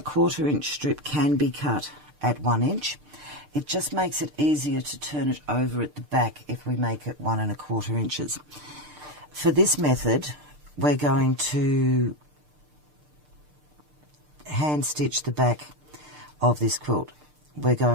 inch strip can be cut at 1 inch. It just makes it easier to turn it over at the back if we make it 1 1/4 inches. For this method, we're going to hand stitch the back of this quilt. We're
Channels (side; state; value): left; late; 6.7 ms